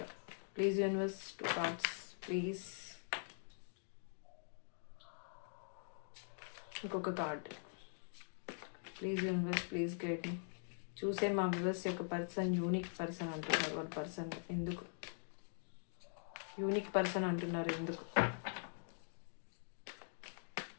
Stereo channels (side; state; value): right; silent; digital silence